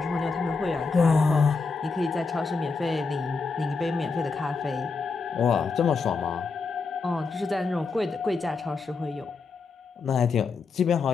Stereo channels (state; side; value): quieter; right; 4.5 dB